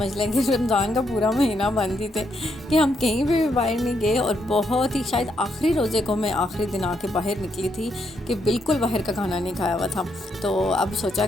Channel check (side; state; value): both; normal; correlation 0.77